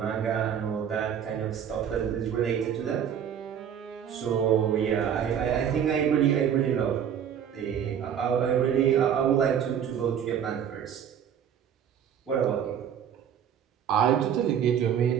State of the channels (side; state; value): left; quieter; 8.7 dB